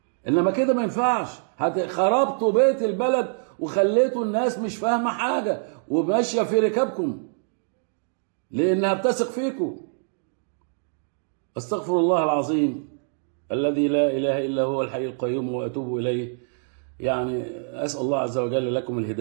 انما كده ما ينفعش. خربتوا بيت البلد وخليتوا الناس مش فاهمه حاجه وماشيه في ركابكم لانها بتثق فيكم. استغفر الله العظيم الذي لا اله الا هو الحي القيوم واتوب اليه. يعني اسال الله عز وجل لكم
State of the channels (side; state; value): left; silent; digital silence